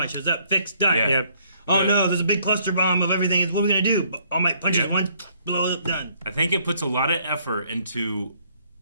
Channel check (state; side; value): inverted; both; correlation -0.66